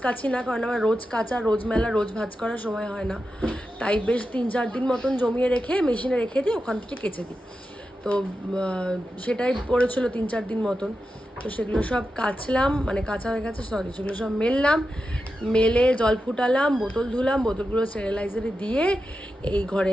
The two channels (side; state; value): both; normal; correlation 0.90